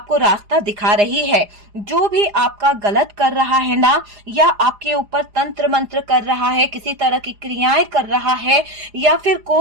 रास्ता दिखा रही है। जो भी आपका गलत कर रहा है ना, या आपके ऊपर तंत्र मंत्र कर रहा है, किसी तरह की क्रियाएं कर रहा है या फिर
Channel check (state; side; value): late; left; 4.9 ms